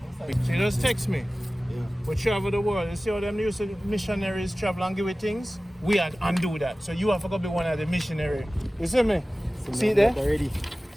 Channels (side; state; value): both; normal; correlation 0.97